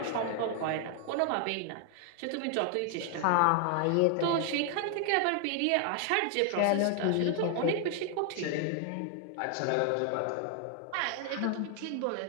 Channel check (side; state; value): both; different; correlation 0.00